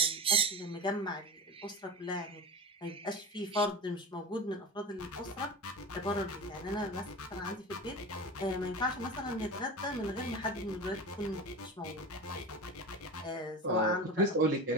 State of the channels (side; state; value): both; normal; correlation 0.28